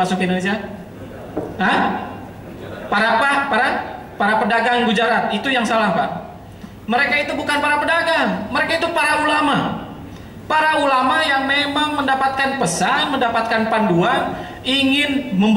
ke Indonesia? Hah? Para pedagang Gujarat. Itu yang salah, Pak. Mereka itu bukan para pedagang, mereka itu para ulama. Para ulama yang memang mendapatkan pesan, mendapatkan panduan, ingin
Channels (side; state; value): both; identical; correlation 1.00